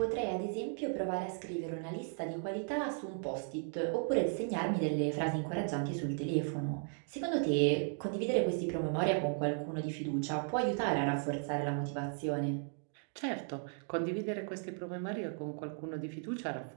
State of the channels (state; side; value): silent; left; 54 dB below the other